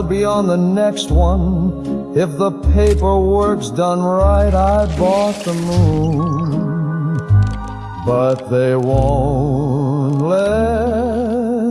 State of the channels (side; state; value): both; identical; correlation 1.00